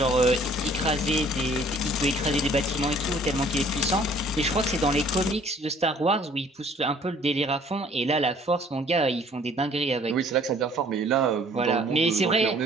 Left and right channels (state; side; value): normal; both; correlation 0.56